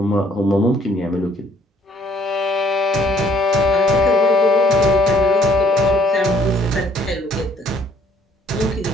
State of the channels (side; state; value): both; normal; correlation 0.61